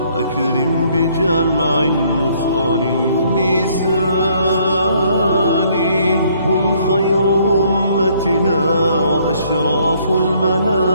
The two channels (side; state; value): both; inverted; correlation -0.65